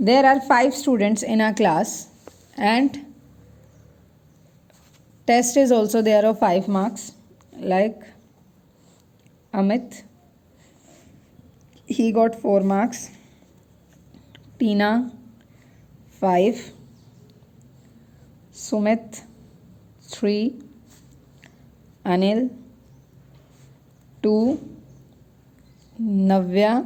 are 5 students in our class and test is also there of 5 marks, like Amit, he got 4 marks, Tina 5, Sumit 3, Anil 2,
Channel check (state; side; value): identical; both; correlation 1.00